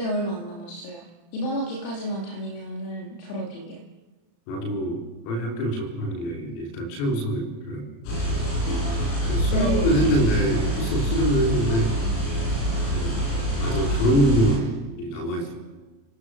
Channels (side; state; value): right; late; 35 ms